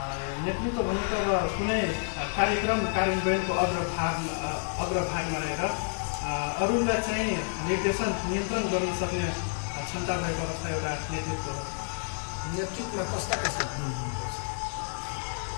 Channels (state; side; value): silent; right; digital silence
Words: नेतृत्व भनेको अब कुनै कार्यक्रम कार्यान्वयनको अग्रभागमा रहेर अरूलाई चाहिँ निर्देशन नियन्त्रण गर्न सक्ने क्षमता भएको अवस्था एउटा नेतृत्व हो। नेतृत्वमा कस्ता हुनुपर्छ?